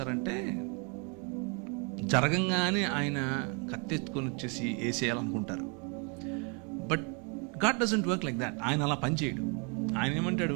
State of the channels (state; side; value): quieter; left; 35.1 dB